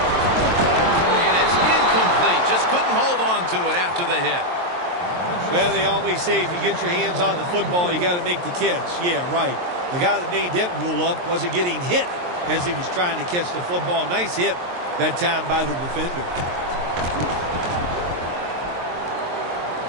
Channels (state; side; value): late; left; 23 ms